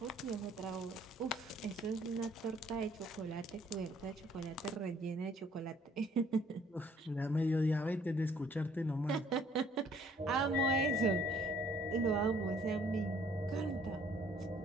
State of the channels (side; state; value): both; normal; correlation 0.61